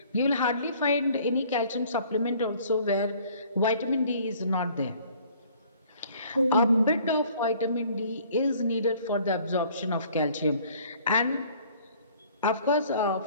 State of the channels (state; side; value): inverted; both; correlation -0.56